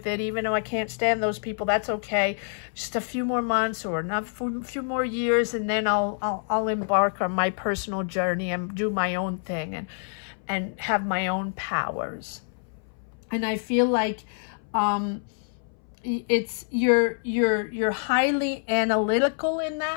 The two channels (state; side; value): silent; right; 60 dB below the other